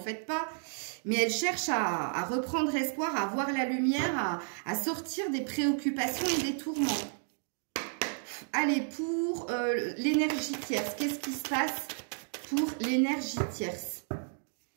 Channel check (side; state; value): left; silent; 56 dB below the other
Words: pas. Mais elle cherche à reprendre espoir, à voir la lumière, à sortir des préoccupations et des tourments. Allez, pour l'énergie tierce, qu'est-ce qui se passe pour l'énergie tierce?